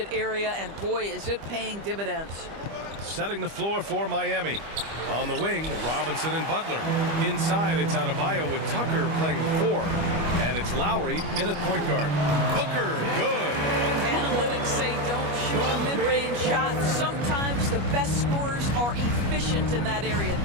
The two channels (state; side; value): late; left; 25 ms